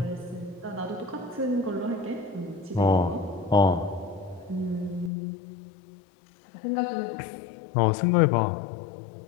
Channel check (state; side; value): drops out; right; at 5.1 s